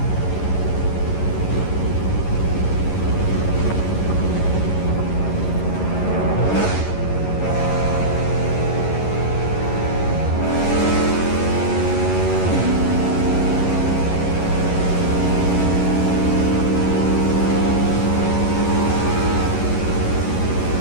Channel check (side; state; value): right; late; 11 ms